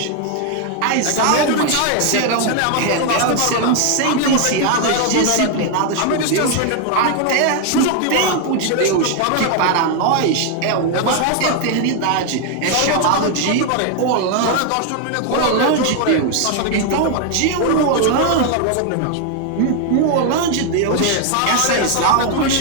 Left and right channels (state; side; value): different; both; correlation 0.01